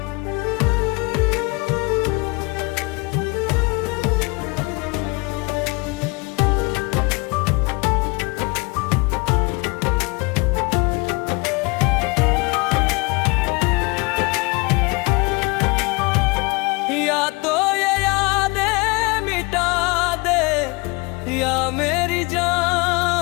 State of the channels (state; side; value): quieter; right; 27.5 dB